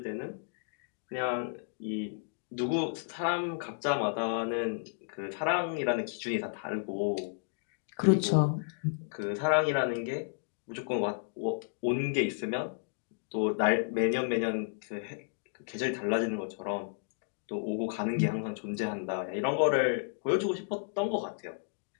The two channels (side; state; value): right; silent; digital silence